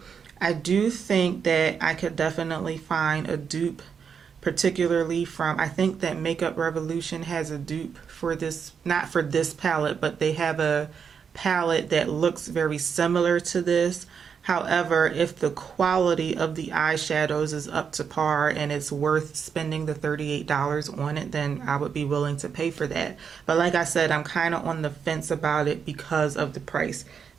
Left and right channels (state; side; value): quieter; left; 6.7 dB